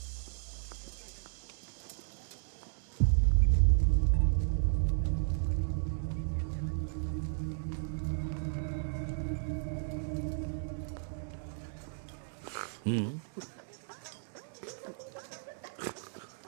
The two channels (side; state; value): left; silent; digital silence